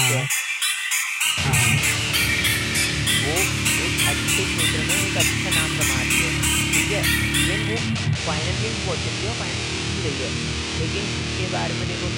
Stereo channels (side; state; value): both; identical; correlation 1.00